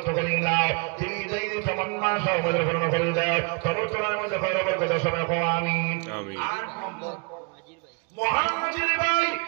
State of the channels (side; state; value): left; quieter; 32.1 dB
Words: করে নাও তুমি যেই তামান্না সব পূর্ণ করে দাও সর্বতলার মধ্যে খয়রবর কথা সবাই কও আমিন আমিন 8 নম্বর মুহাজির ভাই